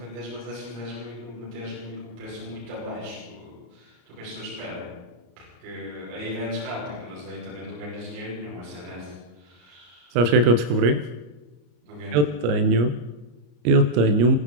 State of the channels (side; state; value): left; late; 34 ms